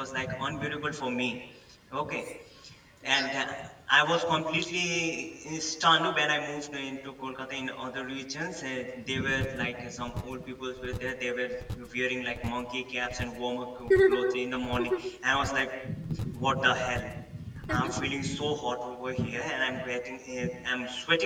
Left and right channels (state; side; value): identical; both; correlation 1.00